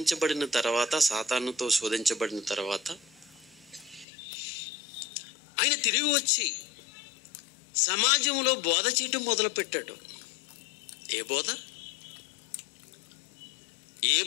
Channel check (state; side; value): drops out; right; at 4.0 s